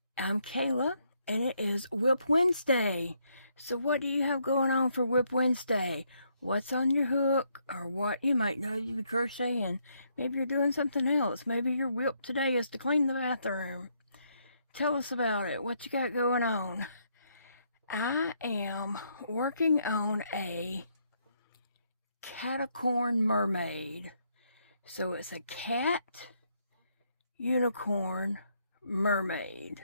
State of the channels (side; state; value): both; inverted; correlation -0.74